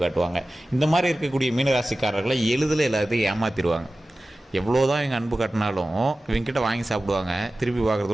காட்டுவாங்க. இந்த மாதிரி இருக்கக்கூடிய மீனராசிக்காரர்களை எளிதில் எல்லாத்தையும் ஏமாற்றிடுவாங்க. எவ்வளோ தான் இவங்க அன்பு காட்டினாலும் இவங்ககிட்ட வாங்கி சாப்பிடுவாங்க, திருப்பி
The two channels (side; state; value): both; normal; correlation 0.96